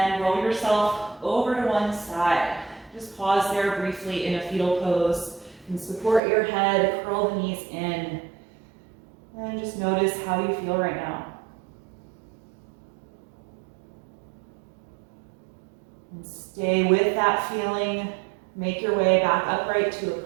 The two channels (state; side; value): drops out; left; at 6.2 s